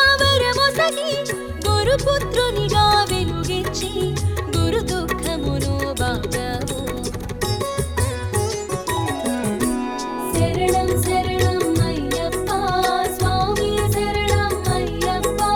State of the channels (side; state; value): both; identical; correlation 1.00